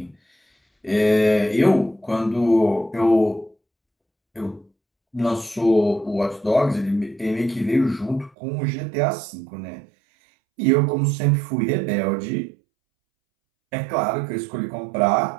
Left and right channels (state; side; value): drops out; left; at 8.3 s